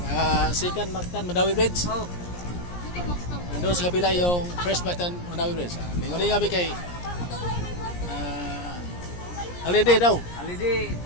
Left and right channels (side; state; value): right; late; 17 ms